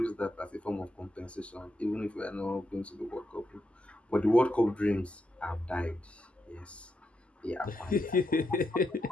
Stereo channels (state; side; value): normal; both; correlation 0.84